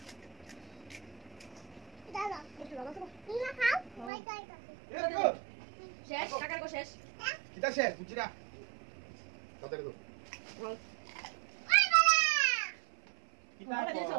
দাদা একটু দাদা তো তুমি খাও বাই বাই শেষ কাকার কো শেষ কিটা শেষ বুঝিরা কত করে দাও আই বাবা কিটা দিছো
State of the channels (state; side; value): drops out; left; at 4.1 s